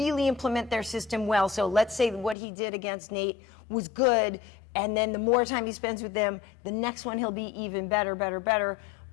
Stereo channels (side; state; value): right; drops out; at 2.4 s